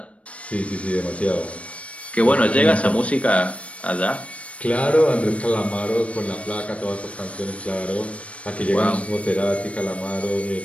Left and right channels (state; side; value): late; right; 0.063 ms